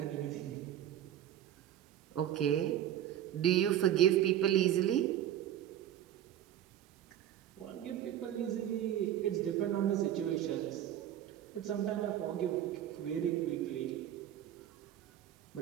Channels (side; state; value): left; quieter; 11.3 dB